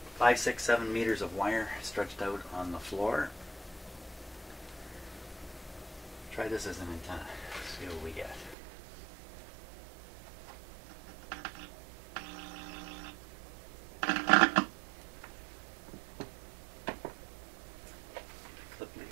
5, 6, 7 meters of wire stretched out on the floor. Try this as an antenna. See what we get. Clip lead.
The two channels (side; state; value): left; drops out; at 8.6 s